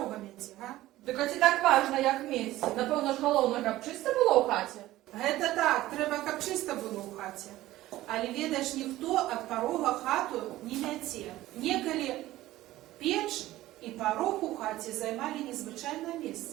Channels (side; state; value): left; quieter; 15.9 dB